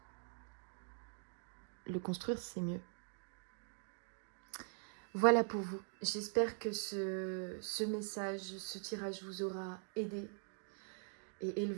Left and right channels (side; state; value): left; silent; digital silence